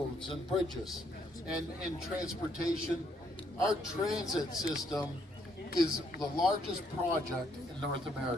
and bridges and transportation, our transit system is the largest project in North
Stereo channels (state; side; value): normal; both; correlation 0.70